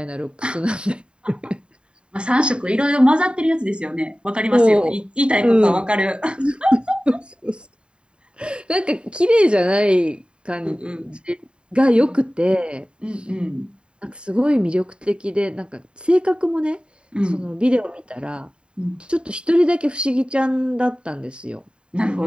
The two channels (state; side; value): late; left; 0.052 ms